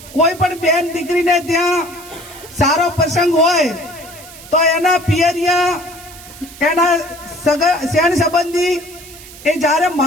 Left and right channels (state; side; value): noise; right; hiss, 18 dB below the sound